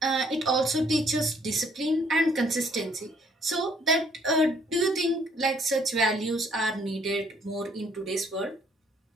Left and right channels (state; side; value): normal; both; correlation 0.63